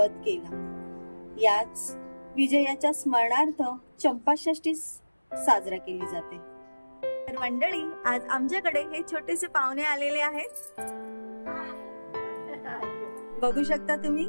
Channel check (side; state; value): both; inverted; correlation -1.00